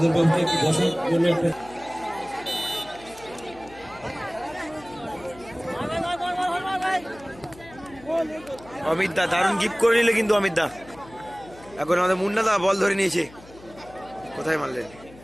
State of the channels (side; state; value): left; noise; hum, 21 dB below the sound